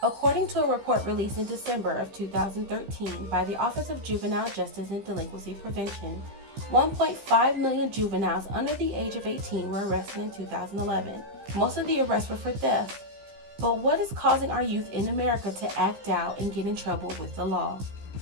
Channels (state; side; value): late; left; 15 ms